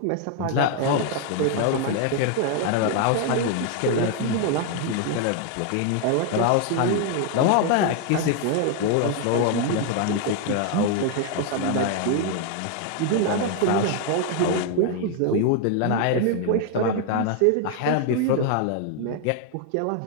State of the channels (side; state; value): both; different; correlation 0.00